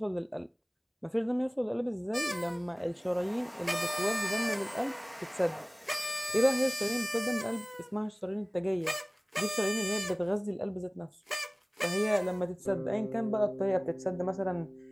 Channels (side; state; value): both; identical; correlation 1.00